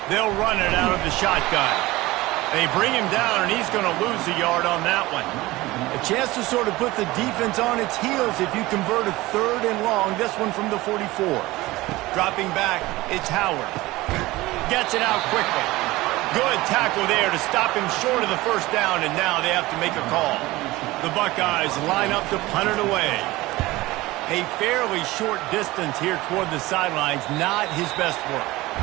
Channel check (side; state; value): left; quieter; 19.3 dB